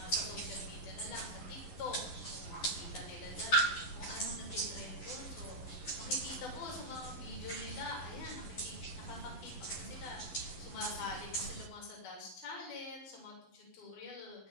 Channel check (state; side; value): late; right; 11 ms